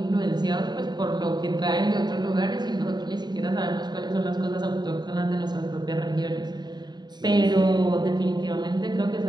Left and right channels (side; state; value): left; late; 0.21 ms